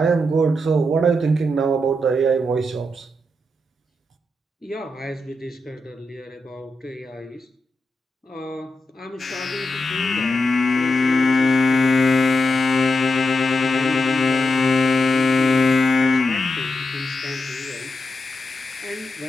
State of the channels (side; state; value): both; normal; correlation 0.86